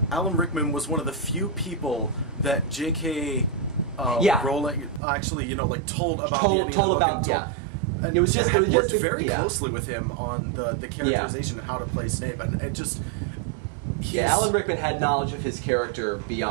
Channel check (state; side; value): drops out; left; at 5.0 s